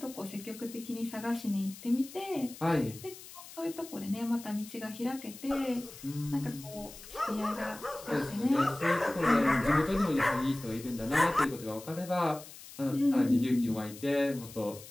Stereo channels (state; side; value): noise; left; hiss, 16 dB below the sound